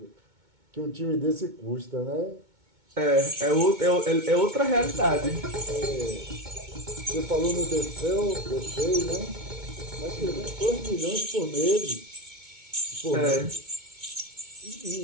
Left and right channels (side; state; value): left; late; 2.2 ms